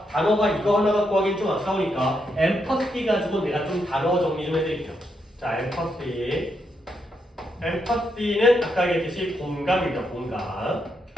단어가 이거 하나 갖고 하기엔 좀 아까우니까 empathy 가지고 내가 좀 단어 정리 좀 해드릴게요. 자, empathy는 아까 얘기했듯이 공감입니다. 공감.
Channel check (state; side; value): normal; both; correlation 0.80